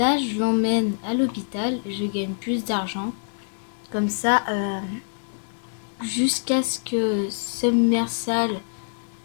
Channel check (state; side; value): silent; right; digital silence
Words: je l'emmène à l'hôpital, je gagne plus d'argent? Comme ça, jusqu'à ce que Submersal,